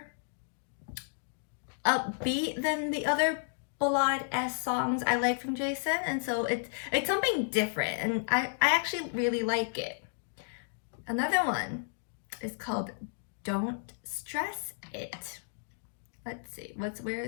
upbeat than the other ballad-esque songs I like from Jason, and so it's something different, and I actually really like it. Another one is called Don't Stress It. Let's see, where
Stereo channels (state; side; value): silent; right; digital silence